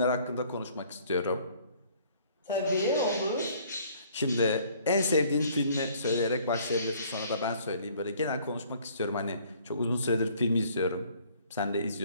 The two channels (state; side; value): inverted; both; correlation -0.57